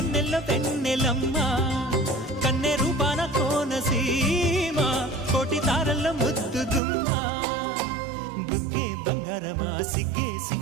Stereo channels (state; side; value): drops out; left; at 6.8 s